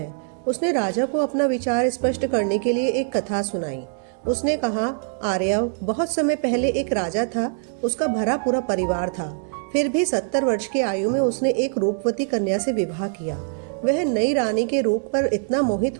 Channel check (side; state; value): left; silent; 63 dB below the other